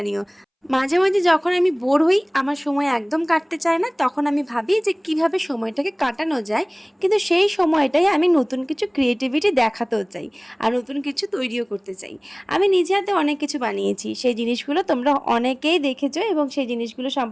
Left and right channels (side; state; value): both; identical; correlation 1.00